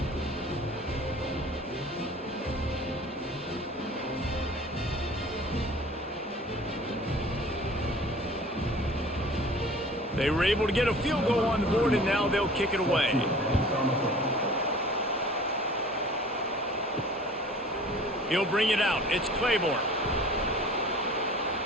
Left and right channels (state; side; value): normal; both; correlation 0.46